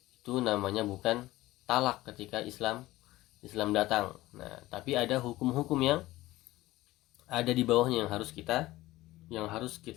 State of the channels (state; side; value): quieter; right; 17.4 dB